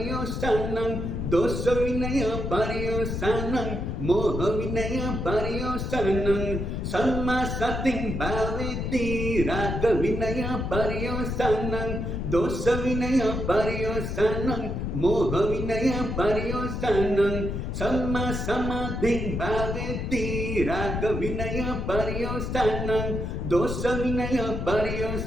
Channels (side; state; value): left; noise; rumble, 3 dB below the sound